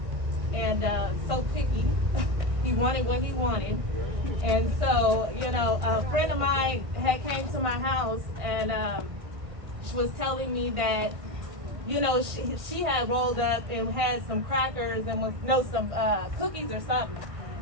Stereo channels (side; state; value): left; late; 1.6 ms